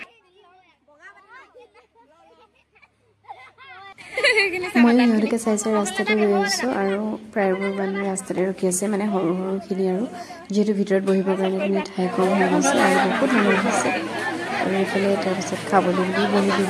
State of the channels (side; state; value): both; identical; correlation 1.00